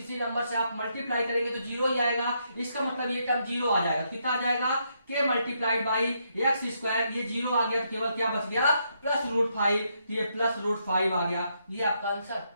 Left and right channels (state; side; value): inverted; both; correlation -0.77